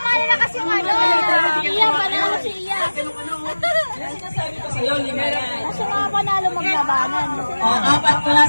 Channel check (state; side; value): inverted; both; correlation -1.00